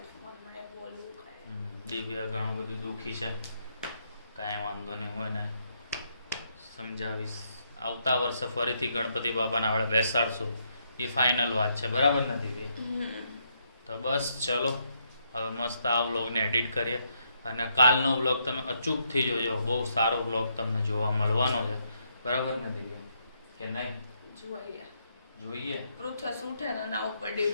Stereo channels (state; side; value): inverted; both; correlation -0.76